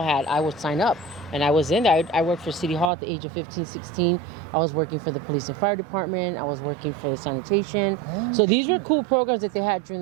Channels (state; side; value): drops out; left; at 2.9 s